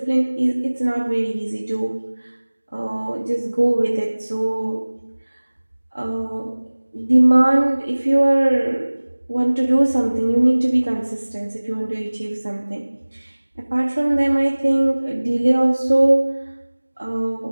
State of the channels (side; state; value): both; inverted; correlation -1.00